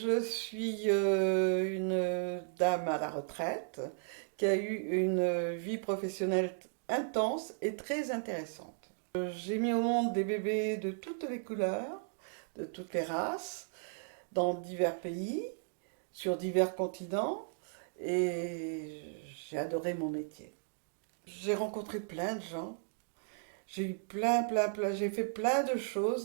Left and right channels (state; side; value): silent; left; digital silence